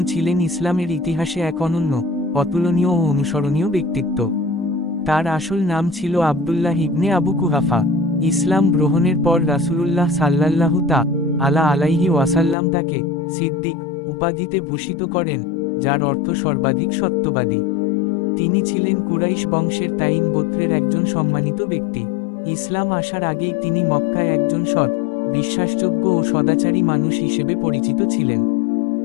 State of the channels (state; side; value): drops out; right; at 12.6 s